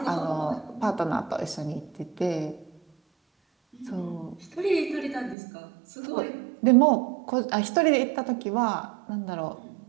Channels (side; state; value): left; drops out; at 5.4 s